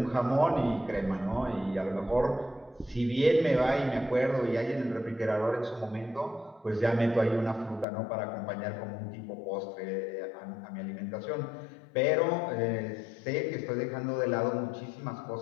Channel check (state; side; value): drops out; right; at 7.9 s